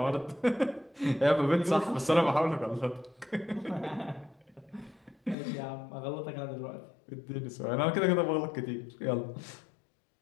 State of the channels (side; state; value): right; drops out; at 5.4 s